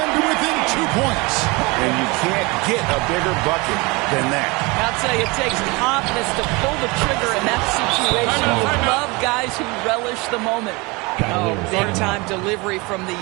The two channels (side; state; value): left; quieter; 26.0 dB